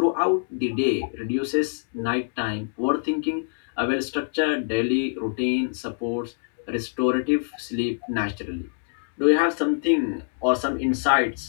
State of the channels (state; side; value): silent; right; digital silence